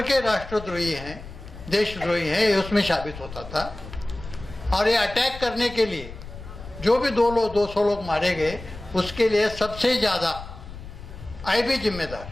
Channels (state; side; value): noise; left; rumble, 14 dB below the sound